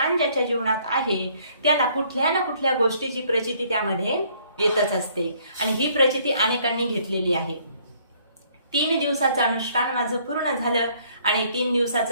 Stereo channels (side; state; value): both; inverted; correlation -0.63